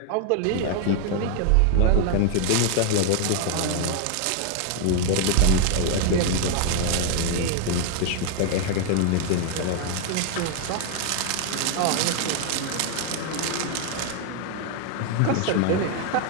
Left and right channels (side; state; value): both; different; correlation 0.00